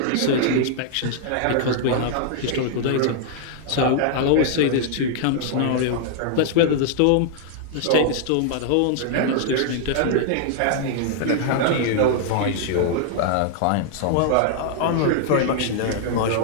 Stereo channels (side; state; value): both; different; correlation -0.01